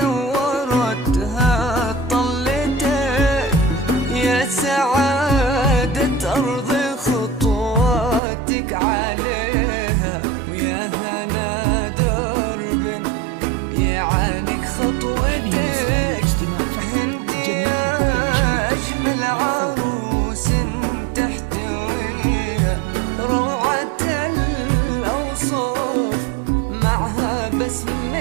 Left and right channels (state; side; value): drops out; left; at 8.2 s